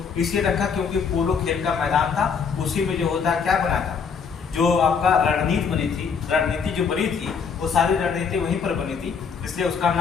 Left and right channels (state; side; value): quieter; right; 6.1 dB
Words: इसलिए रखा क्योंकि पोलो खेल का मैदान था, उसी में जो होता है क्या बना था, जो आपका रणनीति जो बनी थी वो सारी रणनीति वहीं पर बनी थी, इसलिए उसका